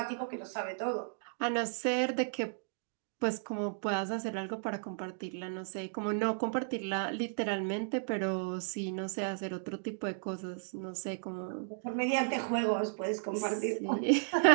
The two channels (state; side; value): silent; left; digital silence